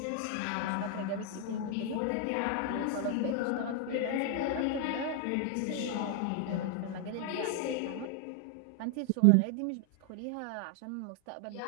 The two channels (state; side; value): different; both; correlation 0.00